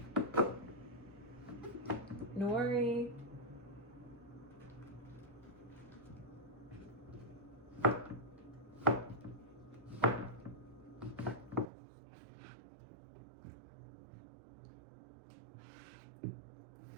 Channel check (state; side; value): drops out; left; at 11.7 s